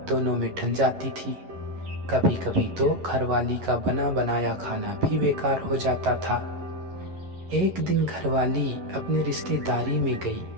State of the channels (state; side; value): late; left; 11 ms